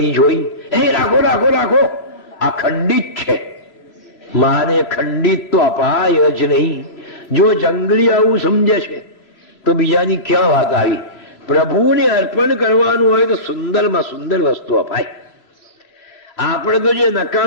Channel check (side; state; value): right; late; 2.8 ms